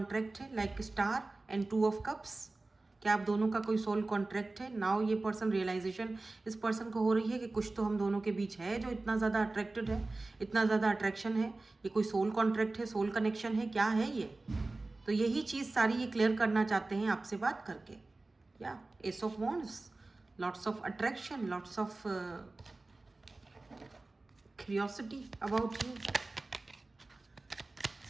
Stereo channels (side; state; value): left; quieter; 3.2 dB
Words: है, like star and 2 of cups, कि आप दोनों का कोई सोल कॉन्ट्रैक्ट है. नाउ ये पर्सन रियलाइजेशन इस पर्सन को हो रही है कि कुछ तो हम दोनों के बीच है जो इतना ज़्यादा अट्रैक्टेड है, इतना ज़्यादा अट्रैक्शन है. ये कोई सोल कॉन्ट्रैक्ट है, सोल कनेक्शन है, क्या है ये? तो यही चीज़ सारी ये क्लियर करना चाहते हैं आपसे बात करके. या ace of wands, lots of attraction, lots of curiosity about you,